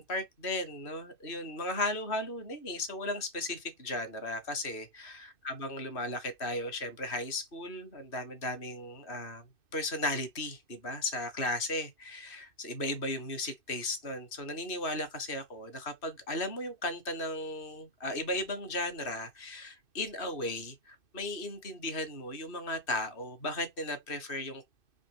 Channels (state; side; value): late; right; 2.6 ms